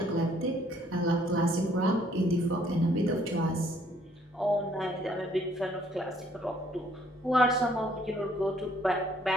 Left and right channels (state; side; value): normal; both; correlation 0.63